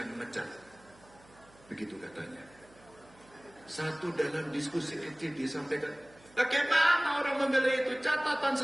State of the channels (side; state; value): right; noise; hum, 26 dB below the sound